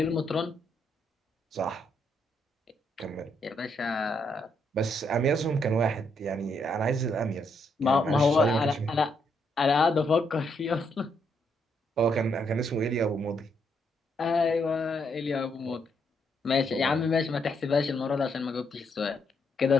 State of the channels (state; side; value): normal; both; correlation 0.76